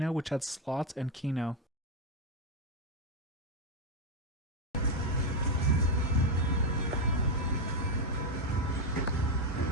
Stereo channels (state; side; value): normal; both; correlation 0.05